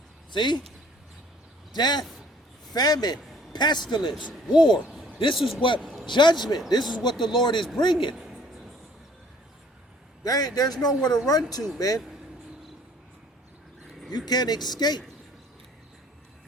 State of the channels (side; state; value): both; normal; correlation 0.57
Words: See? Death, famine, pestilence, war. This is what judgment, this is what the Lord is bringing. There's nowhere to run to, man. You can't escape.